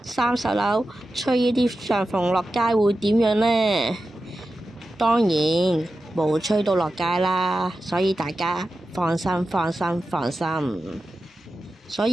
，30樓吹呢啲帳篷落街會點樣呢？當然冇吹到落街啦，所以大家放心。所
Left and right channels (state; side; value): normal; both; correlation 0.92